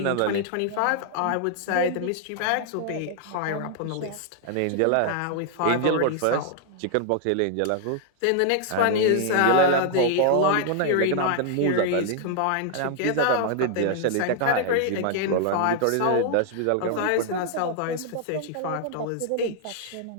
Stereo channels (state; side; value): different; both; correlation 0.00